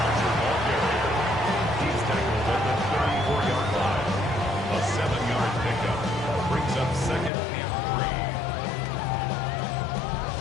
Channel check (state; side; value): drops out; right; at 7.3 s